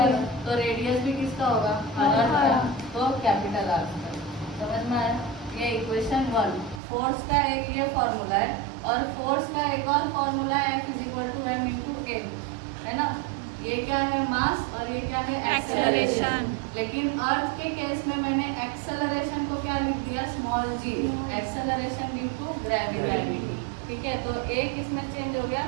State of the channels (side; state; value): left; drops out; at 6.8 s